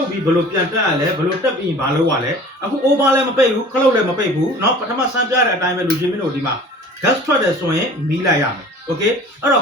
တ်ပြီးဘလို့ပြန်တက်ရလဲဘလို့တက်ပြီးဘာလို့ရလဲအခု over လည်းမပိတ်ဘူးခလုတ်လည်းမပိတ်ဘူးနော်ပထမစမ်းပြတဲ့အတိုင်းပဲလူချင်းမင်းတို့ဒီမှာ gas ထွက်တယ်ဆိုရင်မီးလိုက်ရမယ် okay အဲ့တော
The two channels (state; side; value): normal; both; correlation 0.45